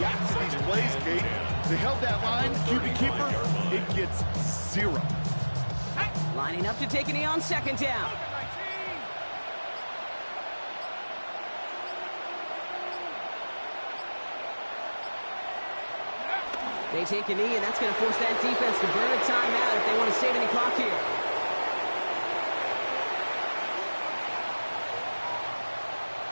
to these plays, Kate. They held that line, QB keeper, it gets 0. Lining up to take a knee on second down. They take a knee, and that's going to force that defense to burn a timeout if they want to save any clock here.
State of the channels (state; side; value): inverted; both; correlation -1.00